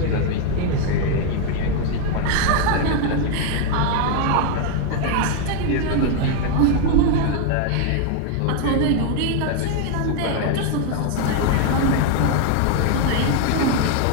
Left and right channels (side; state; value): both; different; correlation 0.01